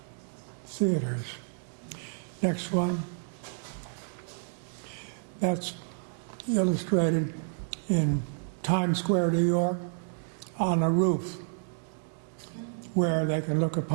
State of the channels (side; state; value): left; silent; 58 dB below the other